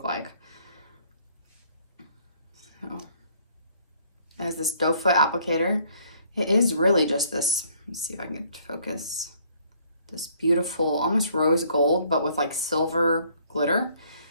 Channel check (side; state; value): both; inverted; correlation -0.62